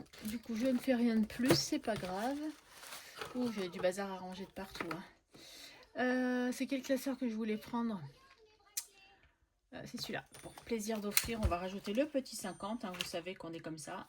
Du coup, je ne fais rien de plus. C'est pas grave. Ouh, j'ai du bazar à ranger de partout. Hein. C'est quel classeur que je voulais prendre? C'est celui-là. Pour plaisir d'offrir, on va rajouter le petit 50. Hein, vous savez qu'on est comme ça.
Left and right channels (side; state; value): both; identical; correlation 1.00